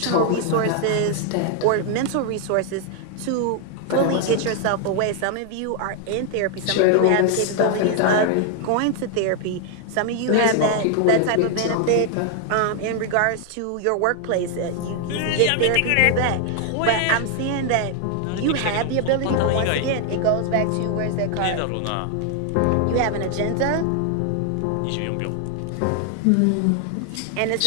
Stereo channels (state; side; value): different; both; correlation 0.00